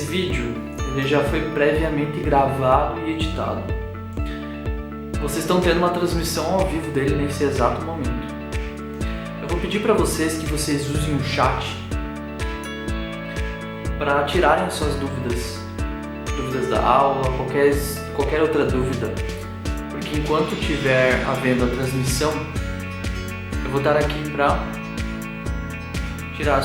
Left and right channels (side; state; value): both; identical; correlation 1.00